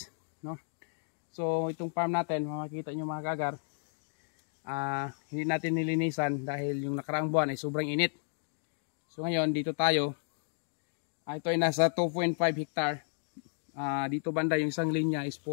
no? So itong farm natin, makikita nyo mga kaagar, hindi natin nilinisan dahil yung nakaraang buwan ay sobrang init. So ngayon dito tayo, ito ay nasa 2.5 hectare. Dito banda yung isang linya is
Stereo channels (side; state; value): right; silent; digital silence